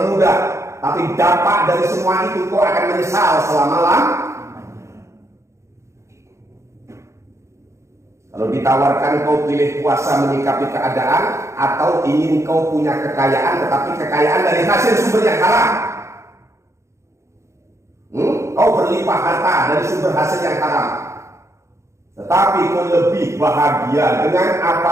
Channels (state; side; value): late; left; 0.14 ms